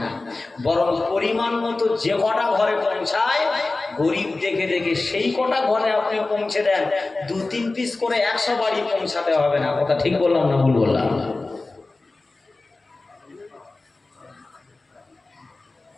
বরং পরিমাণ মতো যে কটা ঘরে পৌঁছায়, গরিব দেখে দেখে সেই কটা ঘরে আপনি পৌঁছে দেন। 2-3 পিস করে 100 বাড়ি পৌঁছাতে হবে না। কথা ঠিক বললাম না ভুল বললাম?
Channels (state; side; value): quieter; right; 3.3 dB